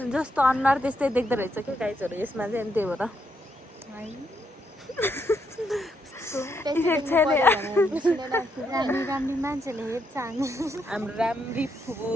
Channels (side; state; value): both; normal; correlation 0.77